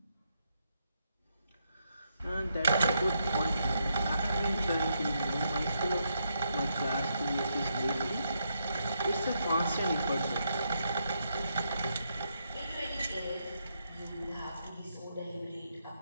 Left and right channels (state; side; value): inverted; both; correlation -0.80